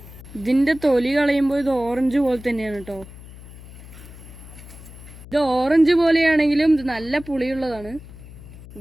ഇതിന്റെ തൊലി കളയുമ്പോൾ ഇത് ഓറഞ്ച് പോലെ തന്നെയാണ് കേട്ടോ. ഇത് ഓറഞ്ച് പോലെയാണെങ്കിലും ഇത് നല്ല പുളിയുള്ളതാണ്.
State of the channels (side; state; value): left; noise; hum, 17 dB below the sound